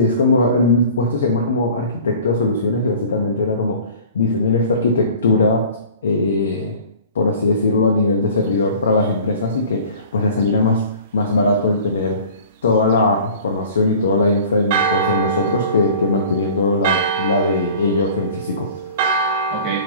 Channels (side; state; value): both; inverted; correlation -0.44